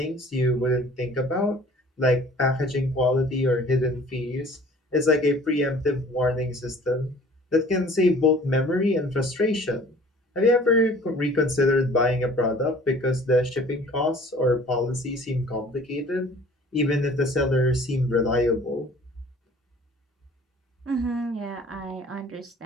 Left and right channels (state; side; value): normal; both; correlation 0.49